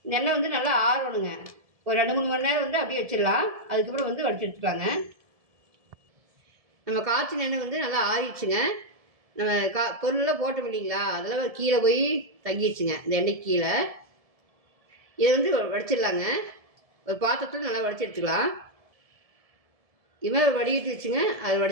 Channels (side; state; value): left; late; 1.7 ms